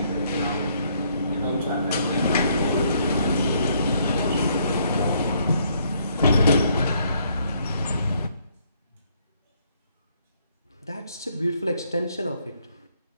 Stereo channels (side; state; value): both; inverted; correlation -0.69